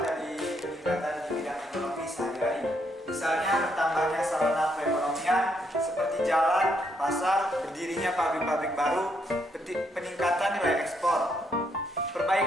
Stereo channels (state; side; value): normal; both; correlation 0.74